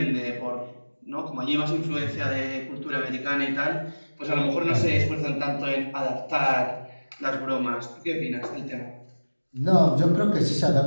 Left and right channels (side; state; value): both; inverted; correlation -1.00